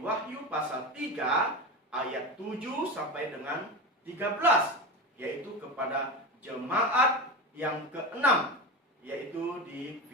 pasal 3 ayat 7 sampai dengan 13, yaitu kepada jemaat yang keenam, yaitu di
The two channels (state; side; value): normal; both; correlation 0.22